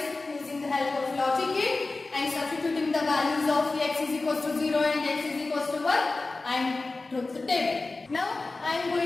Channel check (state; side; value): quieter; right; 3.4 dB